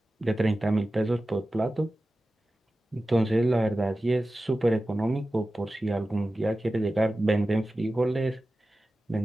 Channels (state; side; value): normal; both; correlation 0.95